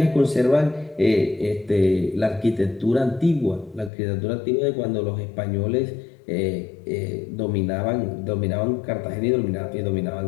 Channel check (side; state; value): right; drops out; at 3.9 s